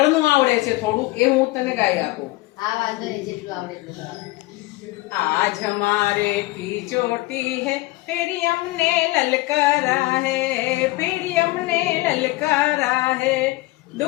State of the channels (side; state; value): right; quieter; 20.2 dB